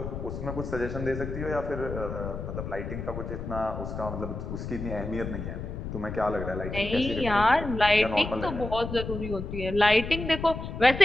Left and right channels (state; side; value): noise; left; rumble, 7 dB below the sound